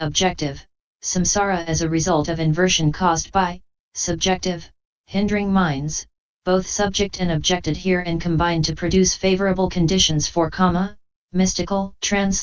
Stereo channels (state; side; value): identical; both; correlation 1.00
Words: samsara as a result of inversion caused by subjective hindering minds, both subject and object adhere and combine to produce favorable conditions for kama, mystical,